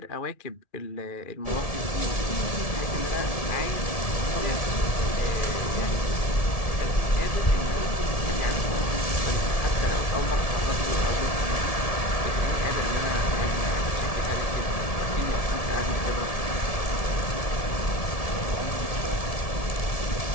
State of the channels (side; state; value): right; late; 1.7 ms